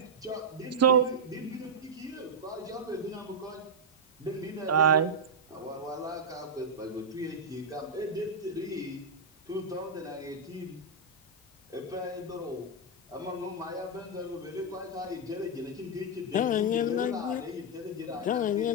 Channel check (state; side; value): normal; both; correlation -0.04